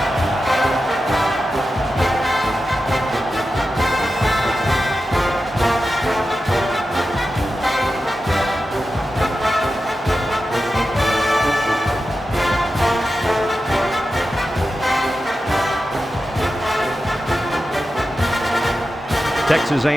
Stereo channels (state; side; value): normal; both; correlation 0.91